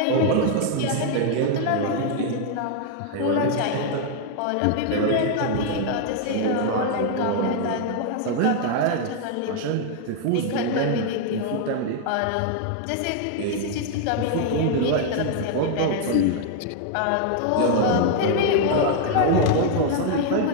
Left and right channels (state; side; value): different; both; correlation 0.00